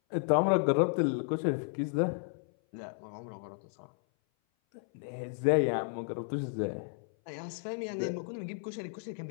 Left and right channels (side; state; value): right; silent; 56 dB below the other